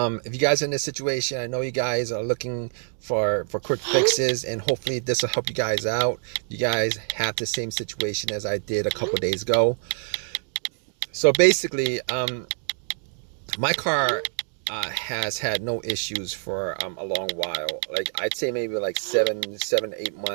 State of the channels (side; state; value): left; silent; digital silence